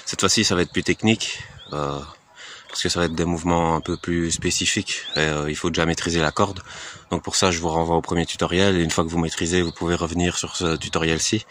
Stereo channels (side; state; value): both; identical; correlation 1.00